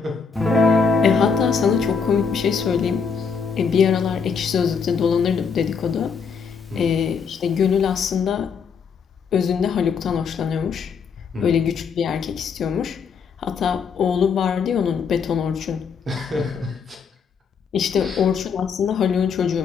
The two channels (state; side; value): quieter; right; 5.9 dB